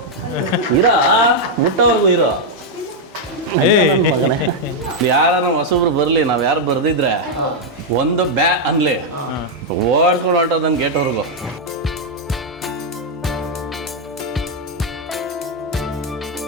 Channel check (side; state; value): both; normal; correlation -0.01